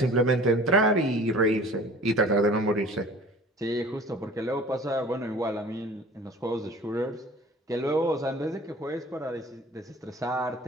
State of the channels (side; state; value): both; normal; correlation 0.45